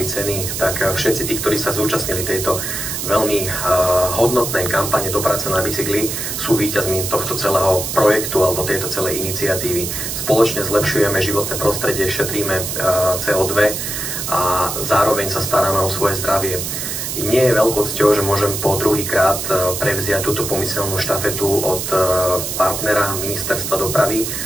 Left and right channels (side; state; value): right; noise; hiss, 4 dB below the sound